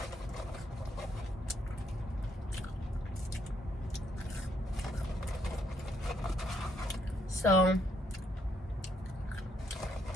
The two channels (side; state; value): both; normal; correlation 0.73